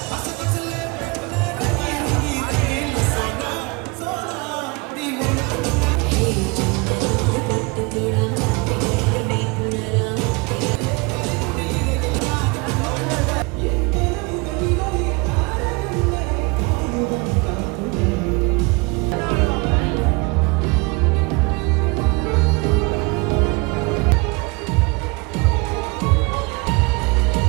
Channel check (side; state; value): left; quieter; 27.4 dB